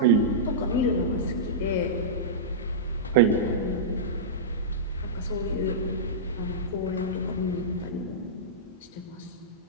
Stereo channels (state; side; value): normal; both; correlation -0.15